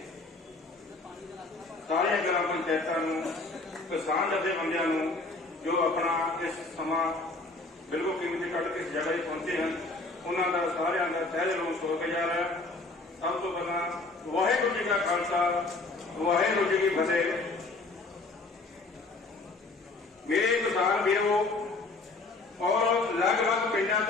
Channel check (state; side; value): quieter; right; 3.3 dB